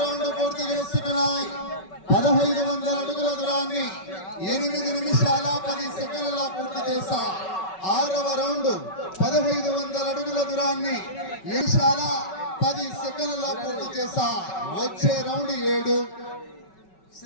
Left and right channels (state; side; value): late; right; 5.3 ms